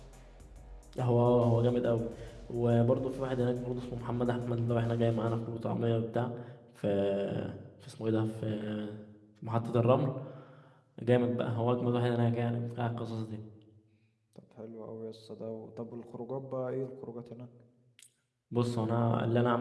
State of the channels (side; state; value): both; identical; correlation 1.00